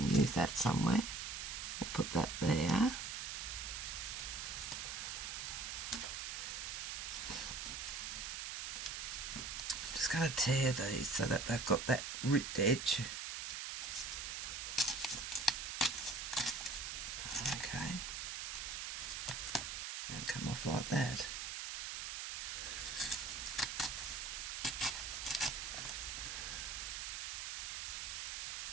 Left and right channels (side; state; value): right; noise; hiss, 4 dB below the sound